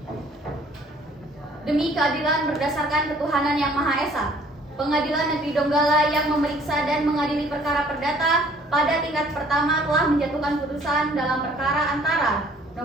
Demi keadilan berdasarkan ketuhanan yang Maha Esa, Pengadilan Negeri Donggala yang memeriksa dan mengadili perkara perdata pada tingkat pertama telah menjatuhkan putusan dalam perkara antara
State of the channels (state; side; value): normal; both; correlation 0.57